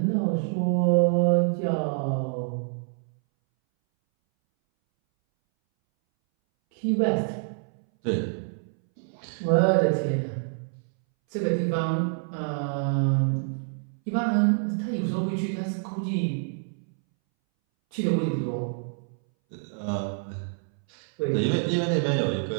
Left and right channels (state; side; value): silent; left; 60 dB below the other